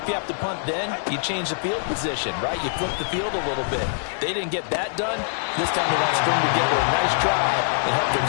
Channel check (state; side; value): silent; right; digital silence